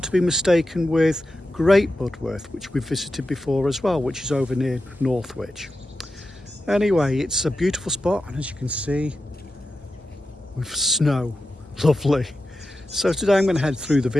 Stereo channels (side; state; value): both; normal; correlation 0.91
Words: to be mistaken with Great Budworth, which we've visited before as well, which is over near Northwich. Anyway, it's a beautiful spot, and as you can see, with snow, lovely. So today I'm going to head through the